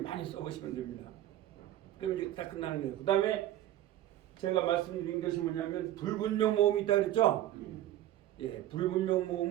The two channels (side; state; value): left; quieter; 13.2 dB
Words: 써보시면 됩니다. 그럼 이제 다 끝나는 거예요. 그 다음에 제가 말씀드린 것이 뭐냐면 불분명 모음이 있다 그랬죠? 예, 불분명